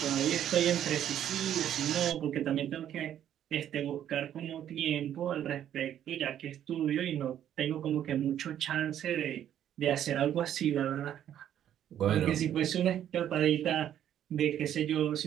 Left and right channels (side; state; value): left; quieter; 10.6 dB